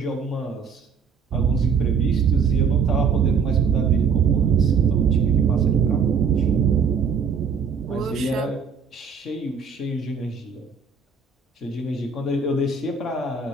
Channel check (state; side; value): quieter; left; 5.9 dB